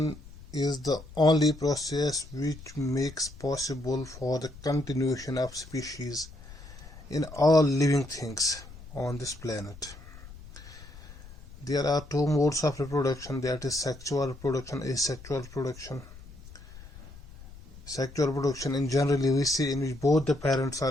is the only process which makes possible for the continuation of species in all living things on this planet. There are two modes of reproduction, that is sexual reproduction, asexual reproduction. Sexual reproduction in generally we see in which both the parents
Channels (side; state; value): left; noise; rumble, 17 dB below the sound